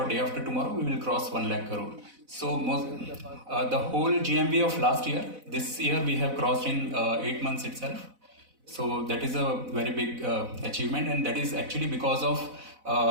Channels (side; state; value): left; late; 4.0 ms